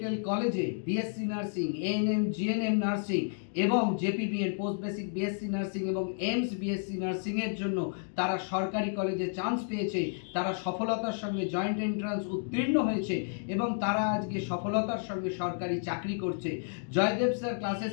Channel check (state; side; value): silent; right; digital silence